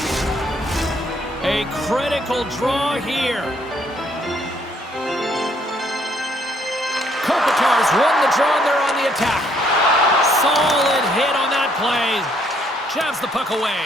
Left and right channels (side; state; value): both; normal; correlation 0.67